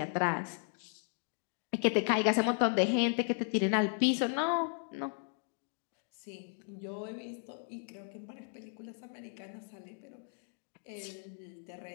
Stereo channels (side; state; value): right; silent; 54 dB below the other